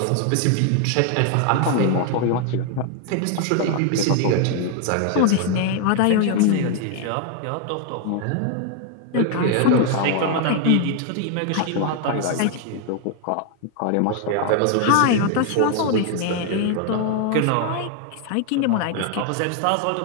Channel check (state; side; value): different; both; correlation 0.01